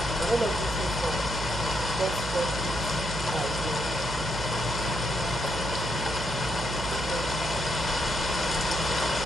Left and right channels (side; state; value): right; noise; hum, 6 dB below the sound